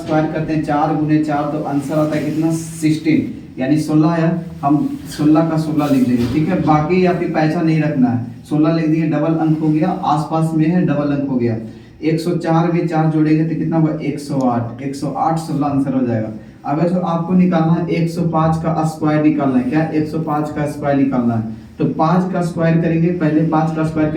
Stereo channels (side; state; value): both; identical; correlation 1.00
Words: करते हैं 4 गुने 4, तो आंसर आता है कितना? 16, यानी 16 है। हम 16 का 16 लिख देंगे। ठीक है, बाकी आपकी पैसा नहीं रखना है, 16 लिख दिए, डबल अंक हो गया, आसपास में है डबल अंक हो गया। 104 में 4 जोड़ेंगे तो कितना होगा? 108। 108 16 आंसर हो जाएगा। अगर जो आपको निकालना है 105 का स्क्वायर निकालना है, क्या 105 का स्क्वायर निकालना है, तो 5 का स्क्वायर करेंगे, पहले 5 का स्क्वायर